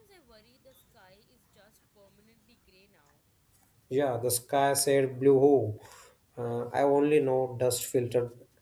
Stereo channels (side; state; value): both; identical; correlation 1.00